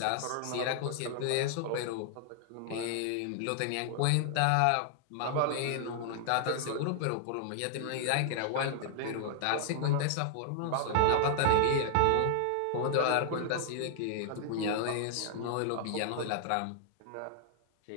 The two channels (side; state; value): both; different; correlation 0.00